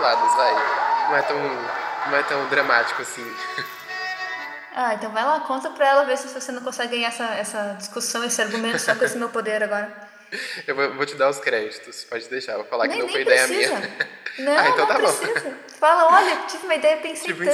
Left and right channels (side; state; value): both; identical; correlation 1.00